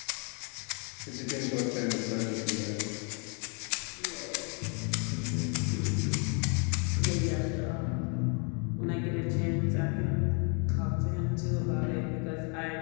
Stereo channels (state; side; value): quieter; right; 36.4 dB